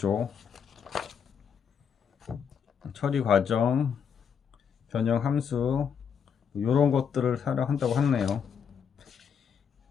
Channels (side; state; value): right; quieter; 7.2 dB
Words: 처리 과정, 변형 함수, 이런 것들을 사용한다고 하네요.